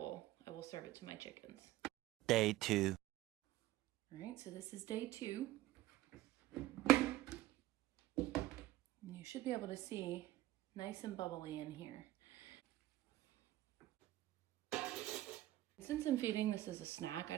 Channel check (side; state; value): left; quieter; 15.6 dB